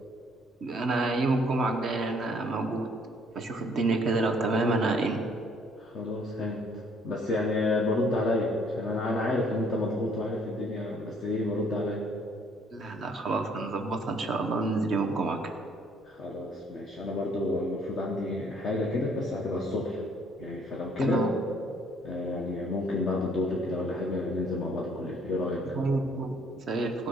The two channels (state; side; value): normal; both; correlation 0.63